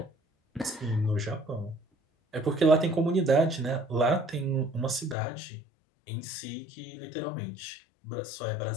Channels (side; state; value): right; drops out; at 5.2 s